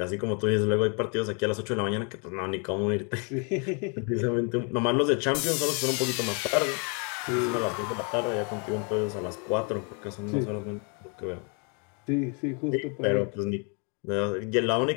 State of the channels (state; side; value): quieter; right; 36.5 dB